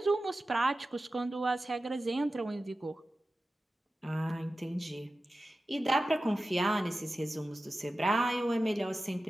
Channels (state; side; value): normal; both; correlation 0.94